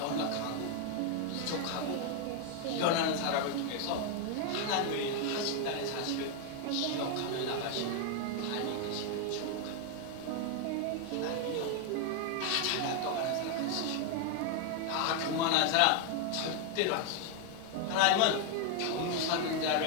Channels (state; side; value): different; both; correlation 0.00